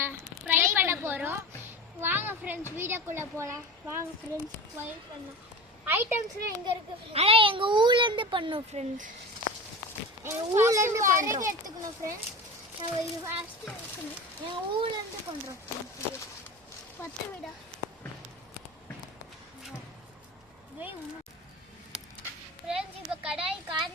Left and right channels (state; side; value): normal; both; correlation 0.30